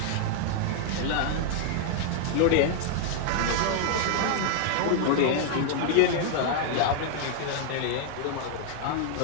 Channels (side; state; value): both; different; correlation 0.00